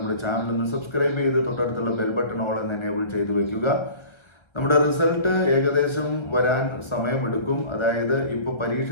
ചാനൽ ഒന്ന് സബ്സ്ക്രൈബ് ചെയ്ത് തൊട്ടടുത്തുള്ള ബെൽ ബട്ടൺ ഓൾ എന്ന് എനേബിൾ ചെയ്ത് വെക്കുക. നമ്മുടെ റിസൾട്ട് ഏകദേശം വരാൻ സമയമെടുക്കും. അതായത് ഇപ്പോൾ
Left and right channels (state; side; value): late; right; 1.3 ms